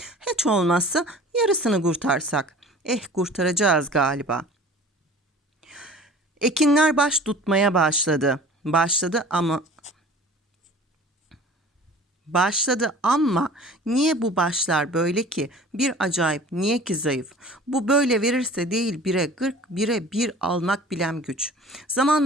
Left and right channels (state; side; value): normal; both; correlation 0.44